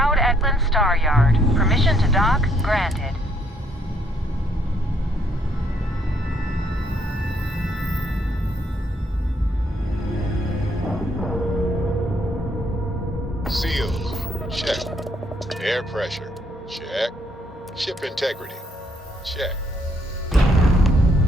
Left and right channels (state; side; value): normal; both; correlation 0.69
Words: Star Yard. Permission to dock granted. Seals, check. Air pressure, check. Ship integrity, check.